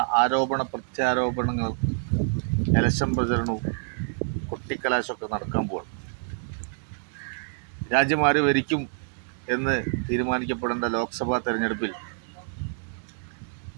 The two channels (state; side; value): silent; left; digital silence